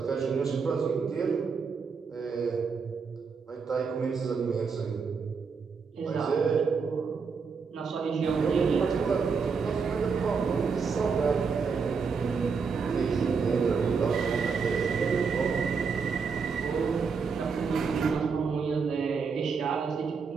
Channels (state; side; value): quieter; left; 5.4 dB